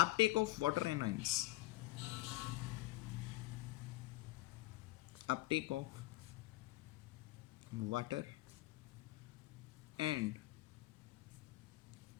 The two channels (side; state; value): right; quieter; 18.6 dB